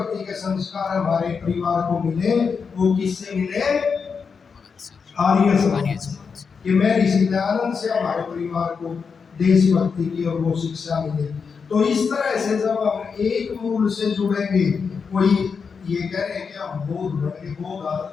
के संस्कार हमारे परिवार को मिले, वो किससे मिले? आर्य समाज। कि मैं ऋषि दयानंद से हमारे परिवार को देशभक्ति की और वो शिक्षा मिले। तो इस तरह से जब हम एक मूल से जुड़ेंगे, कोई ये कह रहे हैं कि हम बौद्ध बन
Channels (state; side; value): quieter; right; 5.7 dB